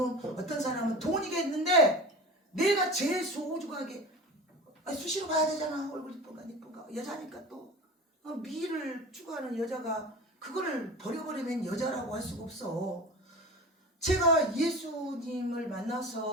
어떤 사람은 돈이겠는데 내가 제일 소중하게 수시로 봐야 되잖아. 얼굴 이쁜가 이쁜가. 여자니까 또 미를 추구하는 여자가 그거를 버려버리면 여자라고 할 수가 없어. 제가 예수님을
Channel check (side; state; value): both; normal; correlation 0.34